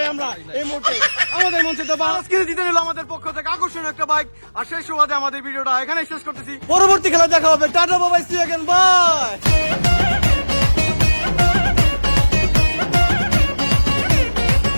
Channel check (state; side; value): inverted; both; correlation -1.00